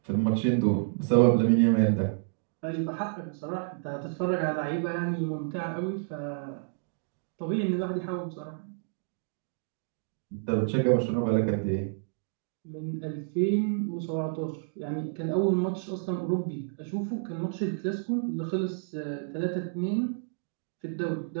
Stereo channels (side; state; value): left; silent; digital silence